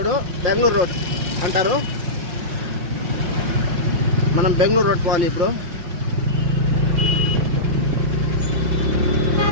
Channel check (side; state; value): left; late; 5.8 ms